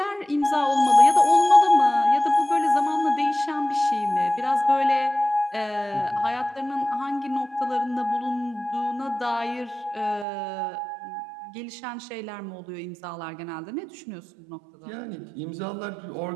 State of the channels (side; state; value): left; drops out; at 10.2 s